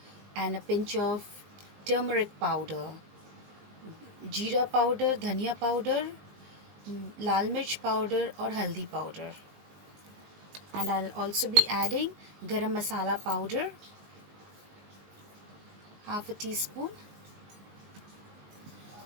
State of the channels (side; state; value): left; late; 20 ms